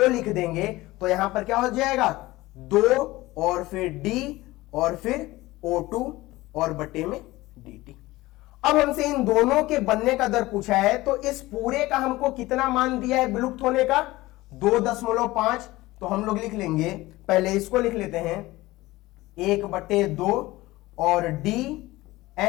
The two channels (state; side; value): quieter; right; 18.9 dB